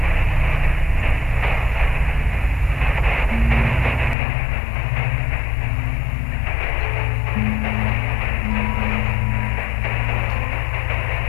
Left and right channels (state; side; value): drops out; right; at 4.2 s